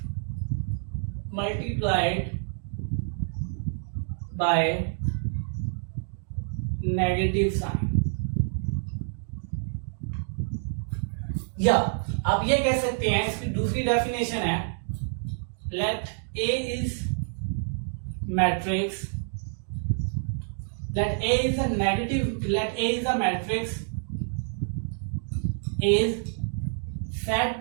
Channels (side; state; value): left; silent; digital silence